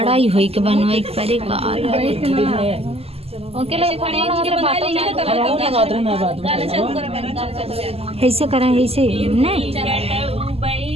ही होई के बनवाई के परे का उनके लिए खड़ी उनके बना लेंगे ऐसे करें ऐसे नहीं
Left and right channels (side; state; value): left; late; 0.29 ms